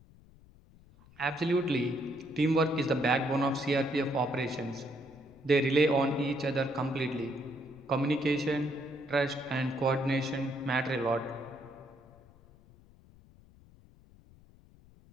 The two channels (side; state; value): left; noise; rumble, 25 dB below the sound